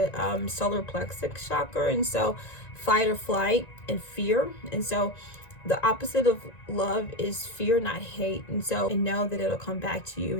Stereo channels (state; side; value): late; right; 1.9 ms